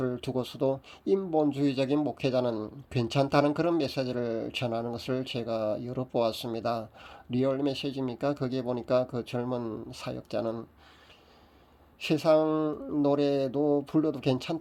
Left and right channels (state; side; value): identical; both; correlation 1.00